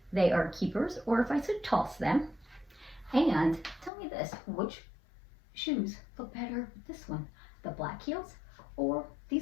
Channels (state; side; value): drops out; right; at 3.9 s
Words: they are keepers or if I should toss them. And tell me this, which shoes look better with this one? The black heels or